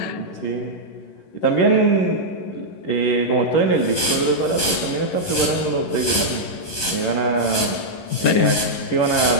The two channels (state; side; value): late; right; 11 ms